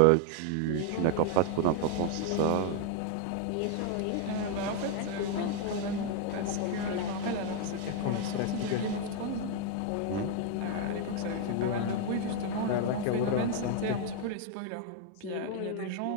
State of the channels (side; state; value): both; different; correlation 0.00